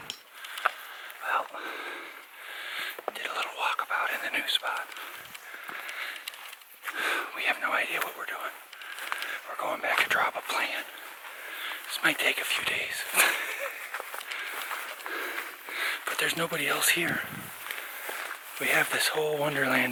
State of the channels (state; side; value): identical; both; correlation 1.00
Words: did a little walkabout in the new spot. We have no idea what we're doing. We're going back to draw up a plan. This might take a few days. But there's nobody else here. We have this whole wonderland